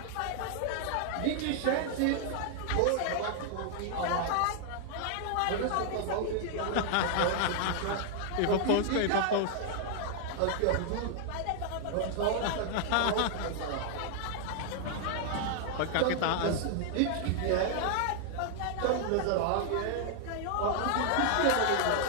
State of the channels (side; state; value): both; different; correlation 0.00